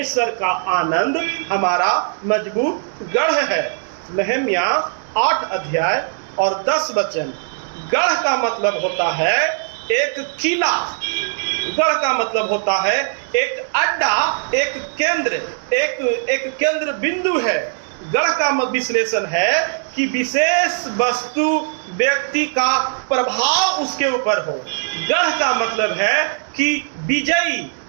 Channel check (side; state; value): left; silent; digital silence